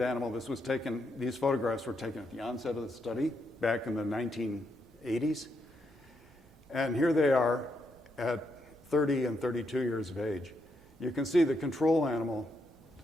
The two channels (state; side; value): normal; both; correlation 0.79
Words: animal. These photographs were taken at the onset of the study back in the 1980s. And here they are at 30 and 32 years of age. You can see the control animal,